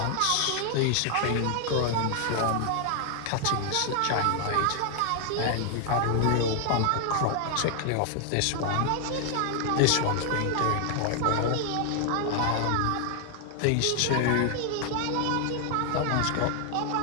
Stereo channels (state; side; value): different; both; correlation 0.00